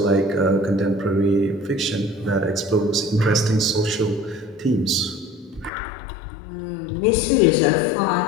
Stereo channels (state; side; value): drops out; right; at 5.7 s